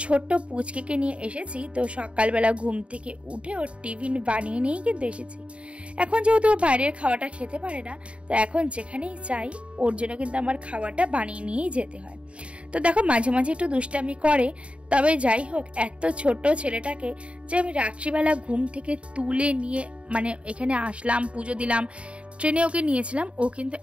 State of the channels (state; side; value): late; left; 0.061 ms